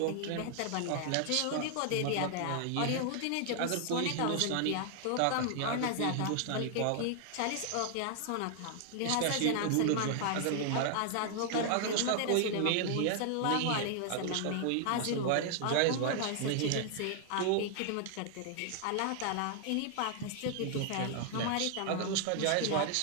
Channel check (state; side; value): different; both; correlation 0.00